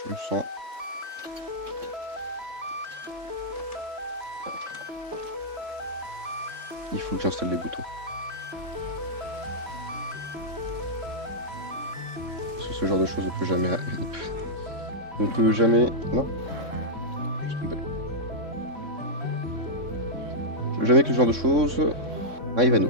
me sens... Il faut que j'installe les boutons. Parce que ce genre de choses ne peut jamais... ne peut jamais... Non. Je suis tombé. Je veux jamais que ce genre de choses arrive à nous.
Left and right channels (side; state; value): left; late; 3.6 ms